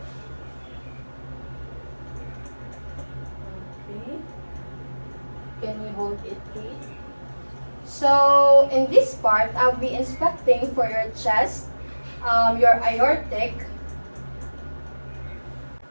Okay. Can you hold it, please? So, in this part, I'll be inspecting for your chest, your aortic,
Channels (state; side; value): inverted; both; correlation -1.00